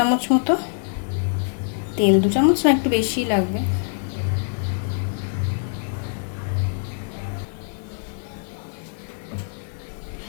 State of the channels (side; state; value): right; silent; 63 dB below the other